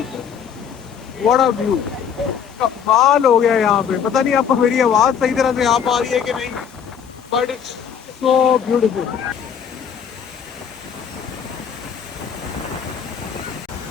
what a view, कमाल हो गया यहाँ पे। पता नहीं आपको मेरी आवाज़ सही तरह से आ पा रही है कि नहीं, बट इट्स सो ब्यूटीफुल।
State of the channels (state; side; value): quieter; right; 7.7 dB